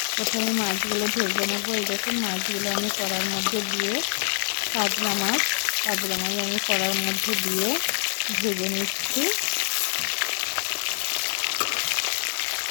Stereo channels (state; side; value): silent; right; 61 dB below the other